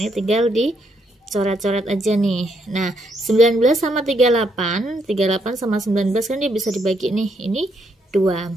tinggal dicoret-coret aja nih. Nah, 19 sama 38 sama 19 kan dia bisa dibagi nih. Ini 2.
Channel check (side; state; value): both; normal; correlation 0.75